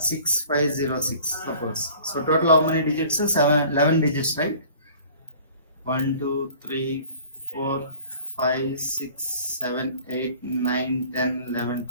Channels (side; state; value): both; inverted; correlation -0.49